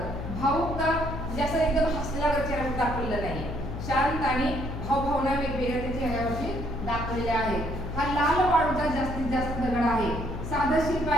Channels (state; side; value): noise; left; hum, 6 dB below the sound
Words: भावुकता म्हणजे असं एकदम हसलेला चेहरा दाखवलेला नाही. शांत आणि भावभावना वेगवेगळ्या त्या चेहऱ्यावरती दाखवलेल्या आहेत. हा लाल वाळूचा जास्तीत जास्त दगड आहे. साधं शिल्प